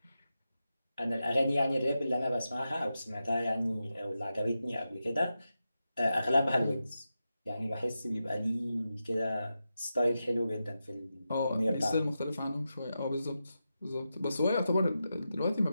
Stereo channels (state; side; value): inverted; both; correlation -0.89